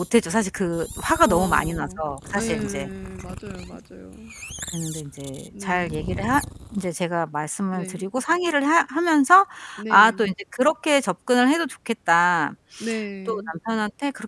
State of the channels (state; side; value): identical; both; correlation 1.00